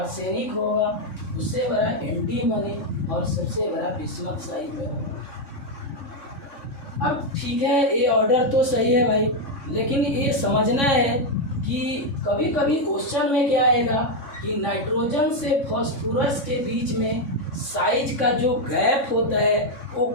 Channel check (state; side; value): late; right; 3.6 ms